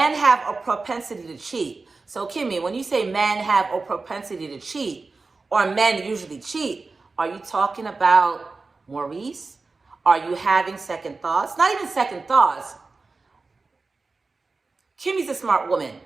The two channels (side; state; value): left; quieter; 3.9 dB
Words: have a propensity to cheat. So Kimmy, when you say men have a propensity to cheat, or men usually cheat, are you talking about Maurice? Are you having second thoughts? Not even second thoughts. Kimmy's a smart woman.